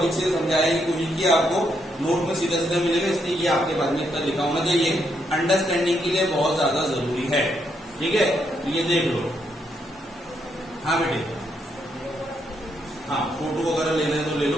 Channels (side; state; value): both; normal; correlation 0.77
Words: से समझाने की कोशिश की, आपको नोट में सीधा सीधा मिलेगा, इसलिए ये आपके पास में इतना लिखा होना चाहिए, अंडरस्टैंडिंग के लिए बहुत ज्यादा जरूरी है, ठीक है। ये देख लो, हाँ बेटे, हाँ फोटो वगैरह लेना है तो ले लो,